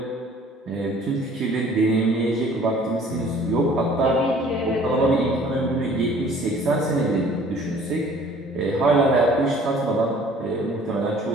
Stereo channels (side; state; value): both; normal; correlation 0.53